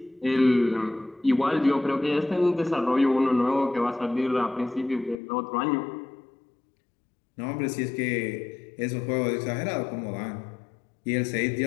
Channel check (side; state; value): right; drops out; at 5.2 s